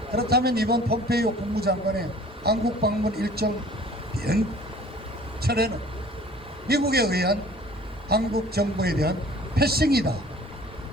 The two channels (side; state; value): both; normal; correlation 0.49